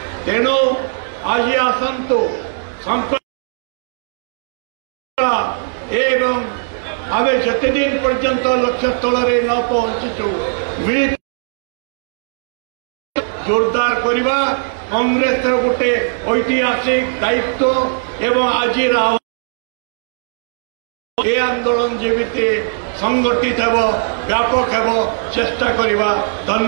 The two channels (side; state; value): left; silent; digital silence